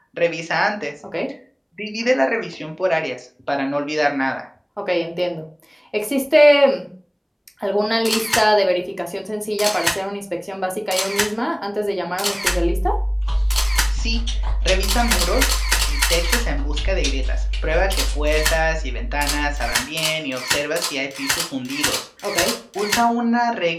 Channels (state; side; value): identical; both; correlation 1.00